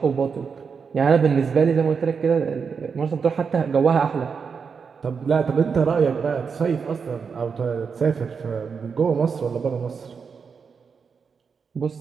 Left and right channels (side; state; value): left; quieter; 5.8 dB